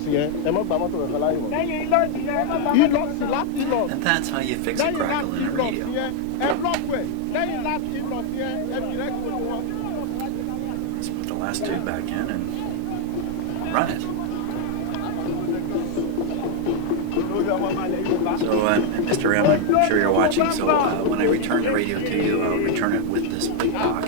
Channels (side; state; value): both; different; correlation 0.01